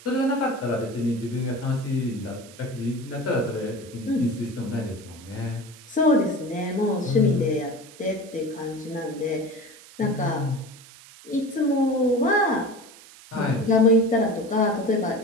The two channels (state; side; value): noise; right; hiss, 21 dB below the sound